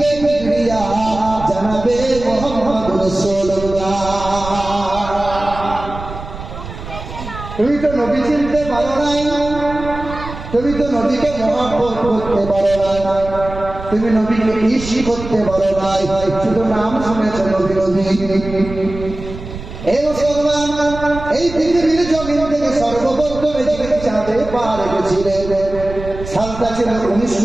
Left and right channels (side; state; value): right; noise; rumble, 11 dB below the sound